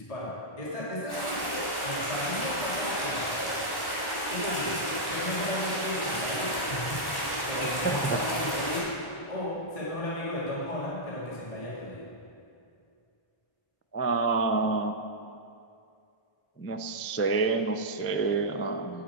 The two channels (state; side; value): late; right; 1.1 ms